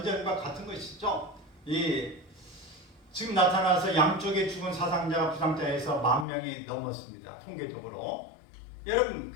같은 것이죠. 이 지금 나타나서 양쪽에 죽은 사상자가 부상자에서 10,000명이 넘었습니다. 통계적으로. 여러분,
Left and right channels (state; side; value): drops out; right; at 6.2 s